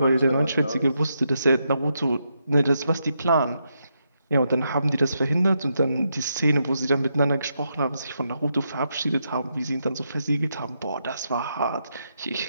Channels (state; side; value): inverted; both; correlation -0.82